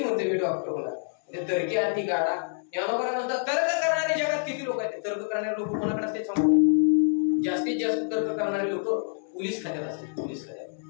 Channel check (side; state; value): right; silent; 60 dB below the other